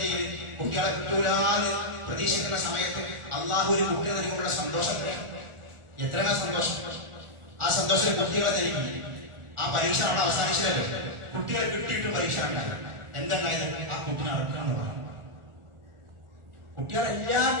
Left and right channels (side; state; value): left; late; 1.4 ms